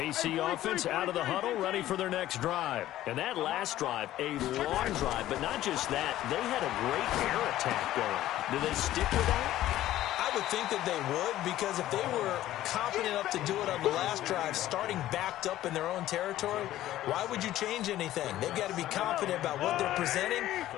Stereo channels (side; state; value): right; quieter; 14.0 dB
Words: offense out of the huddle, ready for their next drive. And that last drive, a long drive, but not just that. They had a great air attack going. Do they stick with that? I would think that they would, because if they were confident enough to do it on the last drive, starting backed up in their own territory, why would you change anything? They've got to be confident about what they're presenting